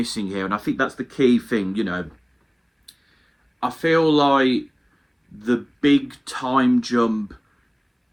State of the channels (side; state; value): both; identical; correlation 1.00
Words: here. And I think that's the key thing, you know. I feel like the big time jump